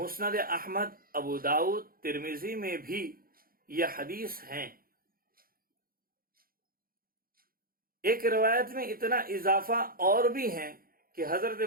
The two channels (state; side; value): late; left; 0.42 ms